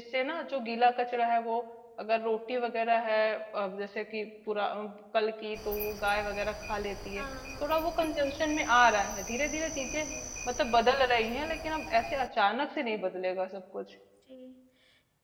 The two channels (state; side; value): identical; both; correlation 1.00